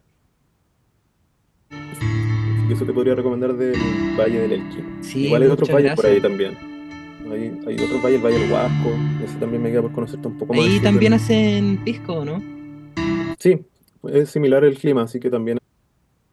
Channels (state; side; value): identical; both; correlation 1.00